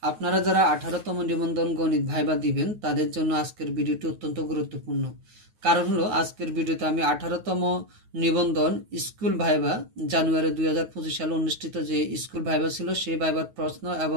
আপনারা যারা 18তম নিবন্ধন গণিত ভাইবা দিবেন তাদের জন্য আজকের ভিডিওটি অত্যন্ত গুরুত্বপূর্ণ। কারণ হলো আজকের ভিডিওতে আমি 18তম নিবন্ধন স্কুল ভাইবা জানুয়ারি 2025 সালে অনুষ্ঠিত যে স্কুল ভাইবা ছিল সেই ভাইবার প্রশ্ন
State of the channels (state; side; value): late; left; 9.3 ms